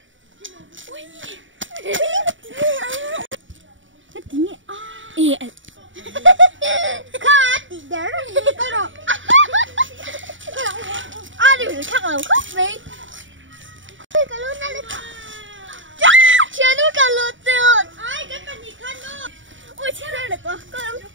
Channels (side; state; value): left; late; 0.56 ms